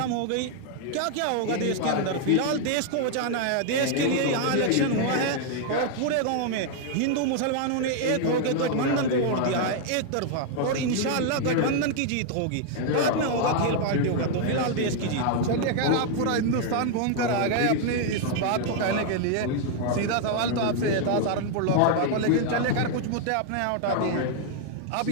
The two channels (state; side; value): different; both; correlation 0.00